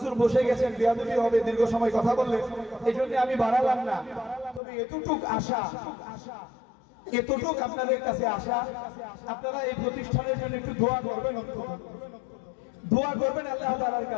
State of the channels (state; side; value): drops out; right; at 4.6 s